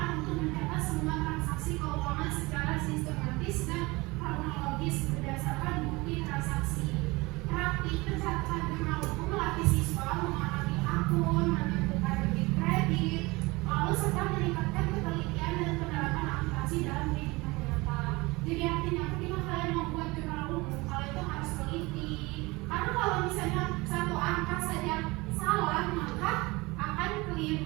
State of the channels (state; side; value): quieter; left; 23.3 dB